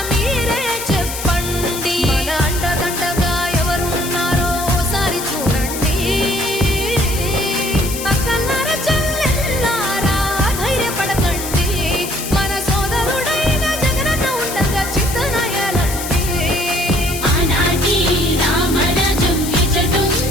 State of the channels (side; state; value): left; noise; hiss, 7 dB below the sound